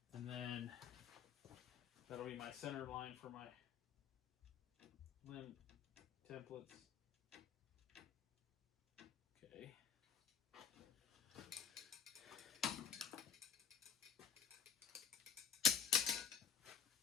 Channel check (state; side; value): quieter; right; 7.0 dB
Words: And then that'll be my center line for my limb templates. Okay.